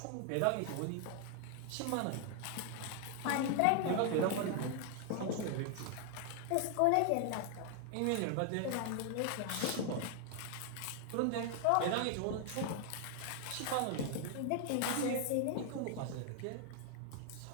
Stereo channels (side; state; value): both; different; correlation 0.00